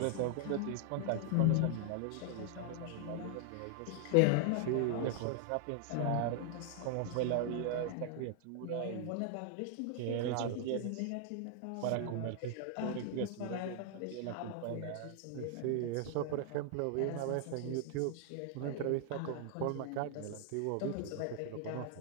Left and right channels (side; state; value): both; different; correlation 0.00